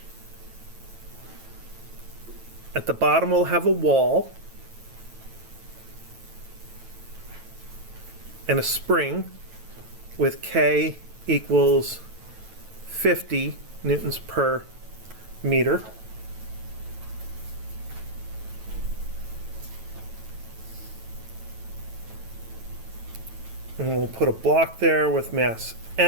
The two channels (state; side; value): late; left; 9.1 ms